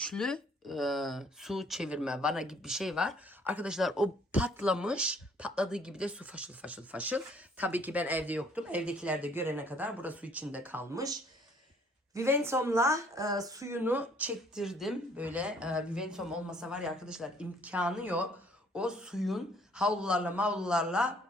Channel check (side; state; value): both; normal; correlation 0.61